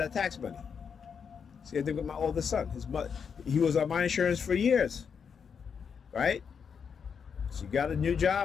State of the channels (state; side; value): quieter; right; 6.6 dB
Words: tax money. See, I think with my oldest son, he was on my insurance for years, right? She got a new